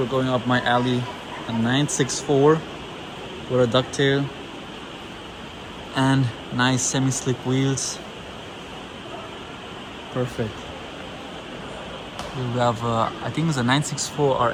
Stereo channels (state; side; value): identical; both; correlation 1.00